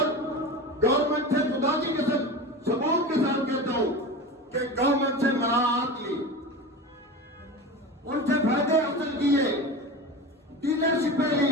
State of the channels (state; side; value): normal; both; correlation 0.29